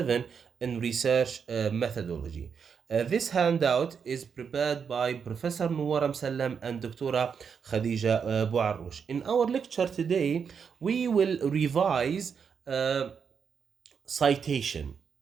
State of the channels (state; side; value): quieter; left; 6.6 dB